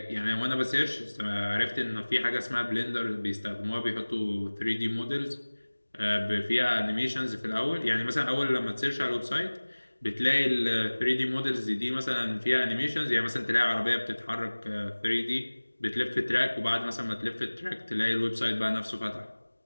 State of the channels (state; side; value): inverted; both; correlation -1.00